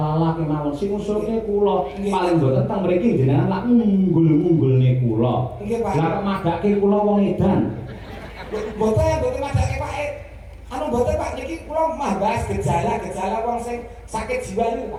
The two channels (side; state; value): both; identical; correlation 1.00